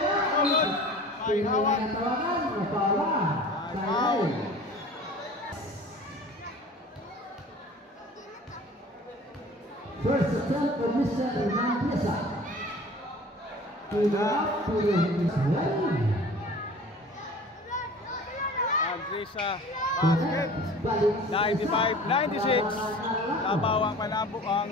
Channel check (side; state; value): both; normal; correlation 0.43